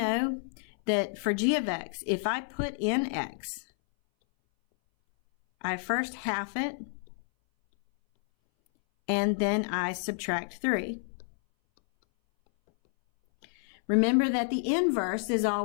that for g of x, if I put in x, I first half it, and then I subtract 3. Remember that the inverse is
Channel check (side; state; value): right; silent; 58 dB below the other